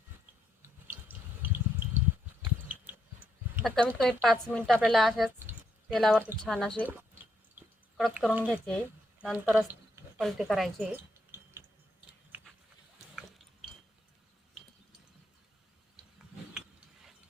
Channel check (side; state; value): both; normal; correlation 0.77